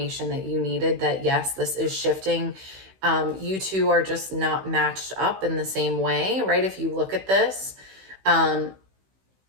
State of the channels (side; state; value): left; late; 16 ms